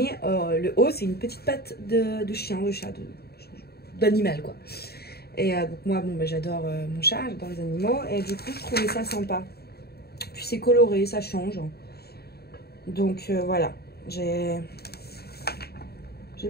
le haut, c'est une petite patte de chien, de chat, d'animal, quoi. Et donc moi, bon, bah, j'adore mon chat, j'adore les animaux. Et du coup, je trouvais ça sympa. Puis c'est coloré, ça change. Donc voilà, j'ai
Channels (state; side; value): late; right; 0.46 ms